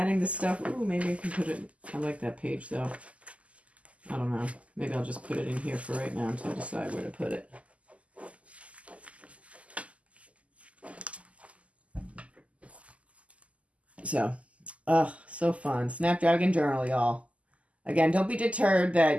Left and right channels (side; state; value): left; late; 0.065 ms